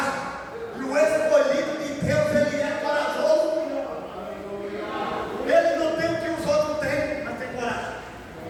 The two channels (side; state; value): both; identical; correlation 1.00